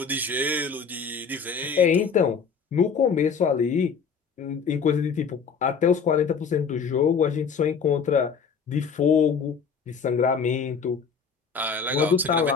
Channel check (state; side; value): quieter; right; 5.9 dB